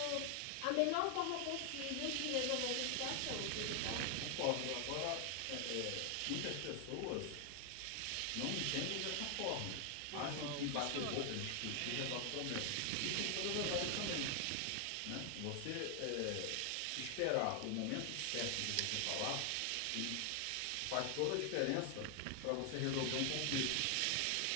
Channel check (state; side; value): different; both; correlation 0.00